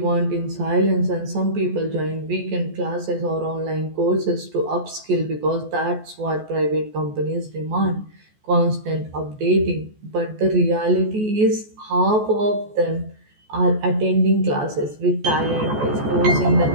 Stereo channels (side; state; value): left; late; 14 ms